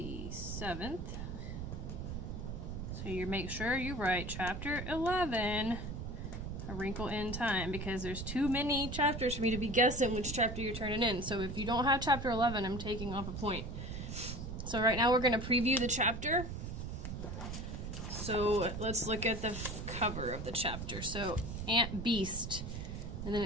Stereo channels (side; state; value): right; noise; rumble, 6 dB below the sound